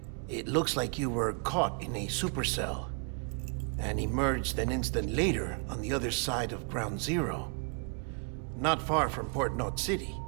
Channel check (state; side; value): quieter; left; 39.4 dB